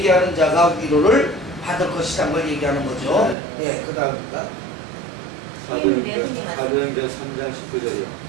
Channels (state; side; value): drops out; left; at 3.4 s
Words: 자가 위로를 받을 것이라는 걸 얘기하는 거죠. 네. 그 다음입니다. 사도행전 3장 19절이요.